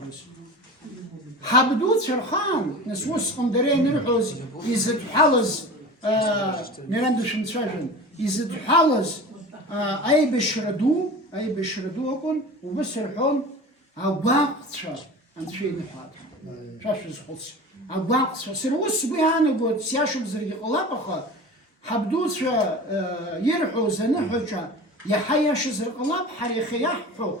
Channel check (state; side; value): normal; both; correlation 0.35